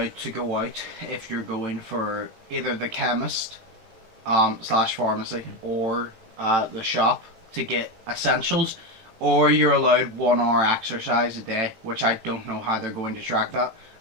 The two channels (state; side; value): late; left; 18 ms